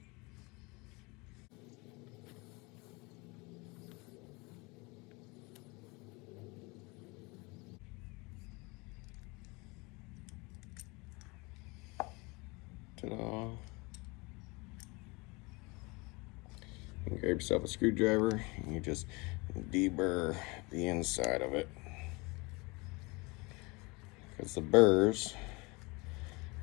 Ta-da. You can grab yourself a screwdriver and you just deburr the inside of it, because the burrs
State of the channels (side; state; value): right; quieter; 26.5 dB